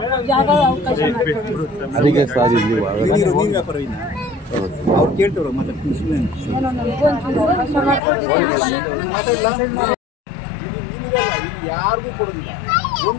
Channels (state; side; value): drops out; right; at 8.0 s